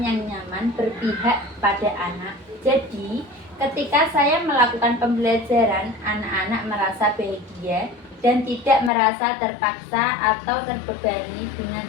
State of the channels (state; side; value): drops out; right; at 8.9 s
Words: yang nyaman berpihak pada anak. Jadi, ketika saya melakukan pembelajaran, anak-anak merasa bahagia dan tidak merasa terpaksa atau terbebani dengan